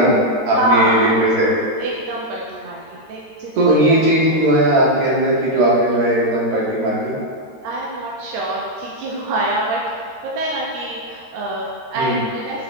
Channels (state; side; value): late; left; 13 ms